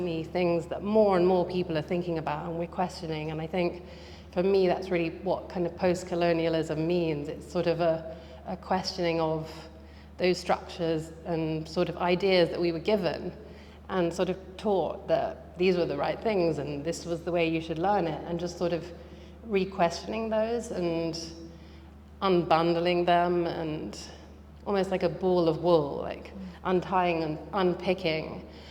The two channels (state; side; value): identical; both; correlation 1.00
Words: things that more and more people are thinking about and we're questioning. And I think for me, that's really what kind of post-colonialism means. It's sort of a questioning of those structures and sort of ideas that we were given and sort of taught that these were the right things and this was the way you should learn it, and just sort of re-questioning those and unbundling them, and almost like a ball of wool, like untying and unpicking